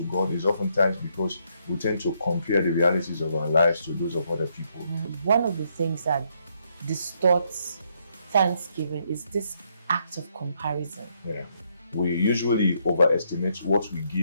God is oftentimes because we tend to compare the realities of our lives to those of other people. One of the things that distorts thanksgiving is this act of comparison. Yeah. We usually overestimate what we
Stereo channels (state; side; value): inverted; both; correlation -0.74